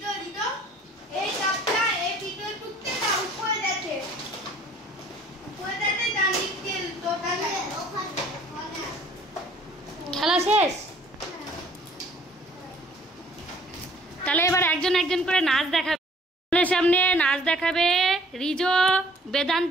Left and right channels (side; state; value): both; normal; correlation 0.56